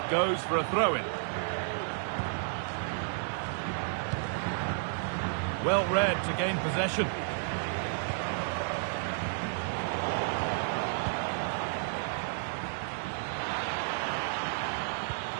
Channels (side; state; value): left; silent; 57 dB below the other